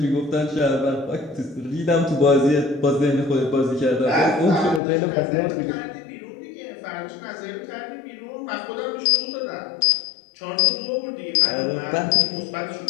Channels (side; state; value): right; drops out; at 4.8 s